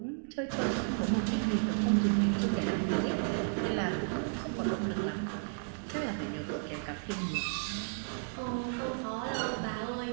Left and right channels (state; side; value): silent; left; digital silence